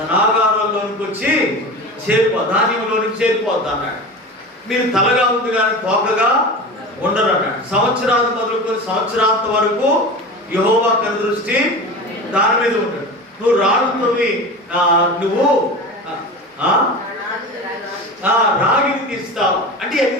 వచ్చి ధాన్యంలోనికి చేరిపోద్ది అన్నాడు. మీరు తలగా ఉంది కానీ తోకగా ఉండరు అన్నాడు. సంవత్సరాలు మొదలుకొని సంవత్సరాంత వరకు యెహోవా కనుదృష్టి దాని మీద ఉంటాడు. నువ్వు రాళ్ళతోని నువ్వు రాగిని తీస్తావు అంటే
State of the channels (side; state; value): both; normal; correlation 0.30